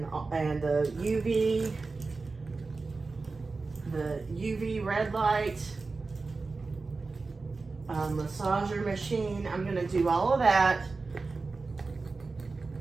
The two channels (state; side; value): quieter; left; 4.0 dB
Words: the UV red light massager machine. I'm gonna do all of that.